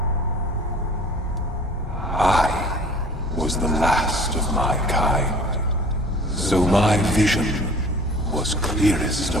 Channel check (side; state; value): both; normal; correlation 0.46